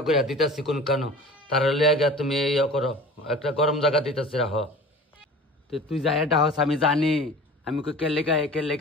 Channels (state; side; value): normal; both; correlation 0.40